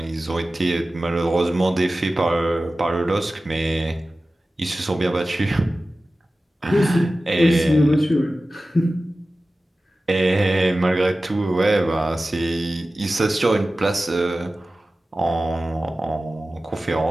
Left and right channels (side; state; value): both; normal; correlation 0.96